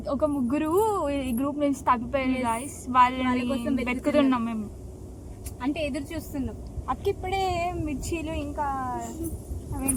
ఒక ముగ్గురు ఈ గ్రూప్ నుంచి తప్పిపోయారు గాయస్, వాళ్ళ కోసం వెతుకుతున్నాం మేము, అంటే ఎదురు చూస్తున్నాం. అక్క ఇప్పుడే మిర్చీలు ఇంకా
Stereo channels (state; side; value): identical; both; correlation 1.00